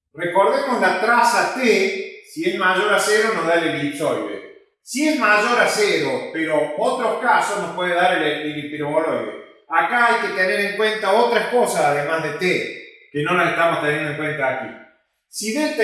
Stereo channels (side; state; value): both; identical; correlation 1.00